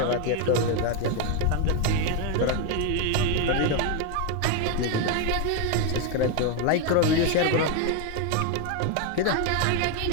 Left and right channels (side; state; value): both; different; correlation 0.02